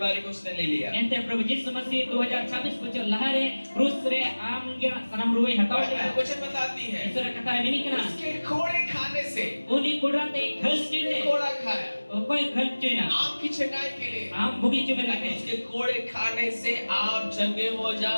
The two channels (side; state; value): both; inverted; correlation -1.00